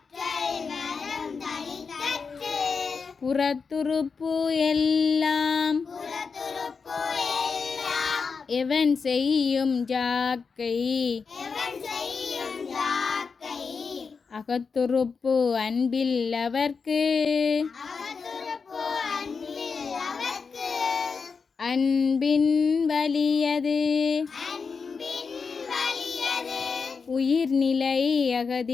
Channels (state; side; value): quieter; right; 5.2 dB